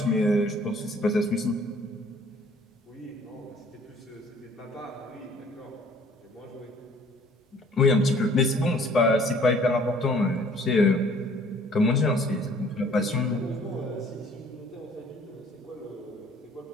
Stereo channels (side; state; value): both; normal; correlation 0.56